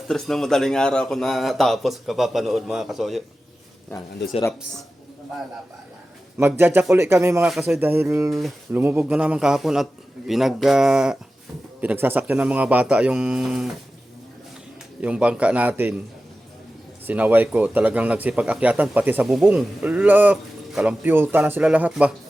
3 ng madaling araw ako natapos kapapanood mga kasoyo. Yan, ando si Raps. Magja-jack ulit kami mga kasoyo dahil lumubog na naman kahapon at pinagsasakyan ng mga bata yung bangka natin. Sinaway ko, talagang nagsipag-akyatan pati sa bubong. Ala, kalampyuta na sila lahat ba?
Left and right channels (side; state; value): both; normal; correlation 0.94